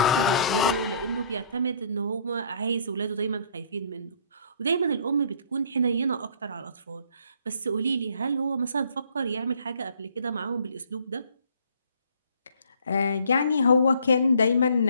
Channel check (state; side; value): inverted; both; correlation -0.59